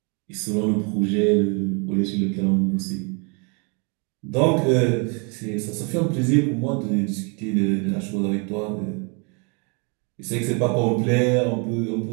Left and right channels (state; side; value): quieter; left; 34.6 dB